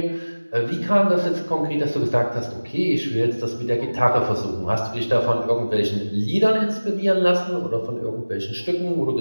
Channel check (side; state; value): both; inverted; correlation -1.00